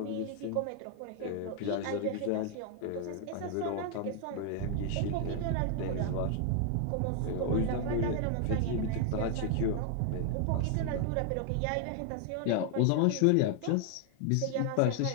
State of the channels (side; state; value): both; different; correlation 0.00